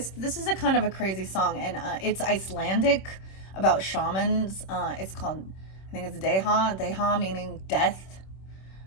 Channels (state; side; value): late; right; 26 ms